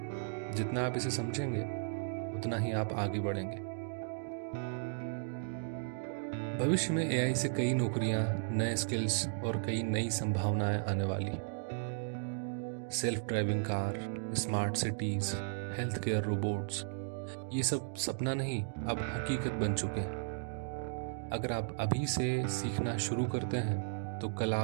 जितना आप इसे समझेंगे, उतना ही आप आगे बढ़ेंगे। भविष्य में एआई से कई नौकरियां, नए स्किल्स और कई नई संभावनाएं आने वाली। Self driving car, smart cities, health care robots, ये सब सपना नहीं, अब हकीकत बन चुके हैं। अगर आप अभी से सीखना शुरू करते हैं तो कल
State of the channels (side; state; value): left; silent; digital silence